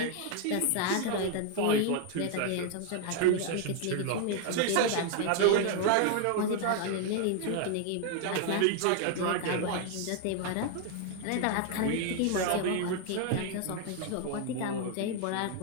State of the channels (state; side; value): different; both; correlation 0.00